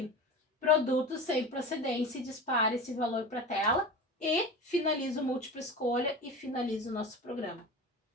Produto sem procedência, dispara esse valor para a tela e finaliza o múltipla escolha e finaliza o nosso programa.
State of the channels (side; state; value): both; normal; correlation 0.31